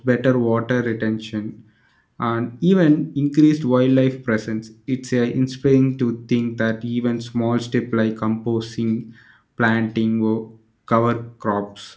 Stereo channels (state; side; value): identical; both; correlation 1.00